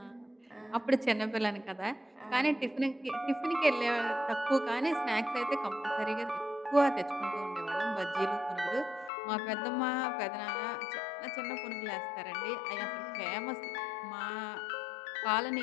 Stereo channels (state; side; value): drops out; right; at 9.1 s